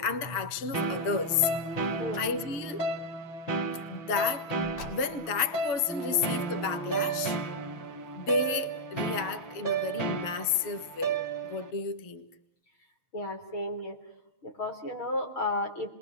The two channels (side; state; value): right; late; 7.0 ms